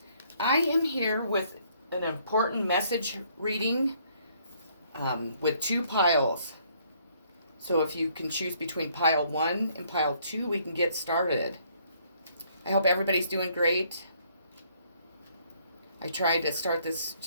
I am here with an important message reading with two piles. So if you can choose between pile 1 and pile 2, we can get started. I hope everybody's doing great. I tried to start this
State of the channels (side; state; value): both; inverted; correlation -0.65